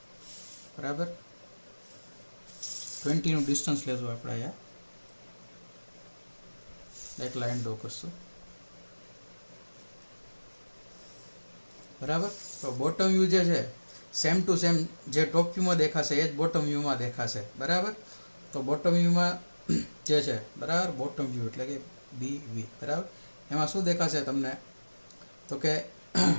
બરાબર. 20નું ડિસ્ટન્સ લેશું આપણે અહીંયા, એક લાઈન ડ્રો કરશું બરાબર. તો બોટમ વ્યૂ જે છે સેમ ટુ સેમ જે ટોપ વ્યૂમાં દેખાશે એ જ બોટમ વ્યૂમાં દેખાશે બરાબર. તો બોટમ વ્યૂમાં જે છે બરાબર, બોટમ વ્યૂ એટલે કે BV બરાબર. એમાં શું દેખાશે તમને તો કે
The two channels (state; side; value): inverted; both; correlation -1.00